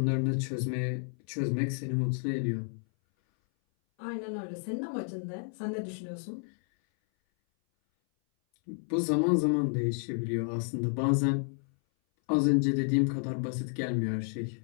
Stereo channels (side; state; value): right; silent; 57 dB below the other